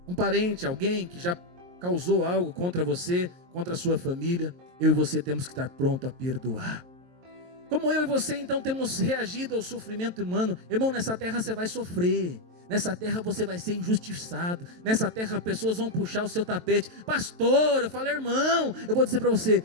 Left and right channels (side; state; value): left; late; 23 ms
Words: Um parente, alguém que já causou algo contra você, contra a sua família, eu e você temos que estar pronto a perdoar. Como eu e você então temos reagido ao sofrimento humano? Irmão, nessa terra você vai sofrer. Nessa terra você vai ser injustiçado. Nessa terra pessoas vão puxar o seu tapete. Pastor, eu falo, irmão, eu vou dizer para você,